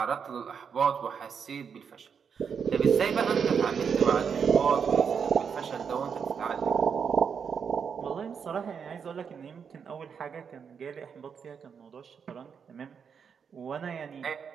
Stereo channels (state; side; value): quieter; left; 6.7 dB